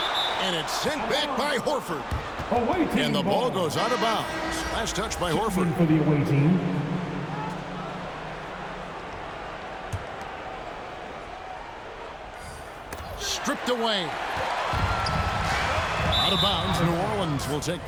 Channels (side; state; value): both; identical; correlation 1.00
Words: And it's sent back by Horford. Away team And the ball goes out of bounds. Last touch by Horford. For the away team. Stripped away. Out of bounds. New Orleans will take